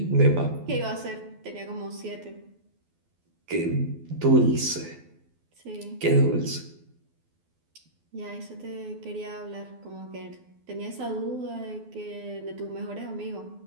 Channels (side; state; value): left; late; 12 ms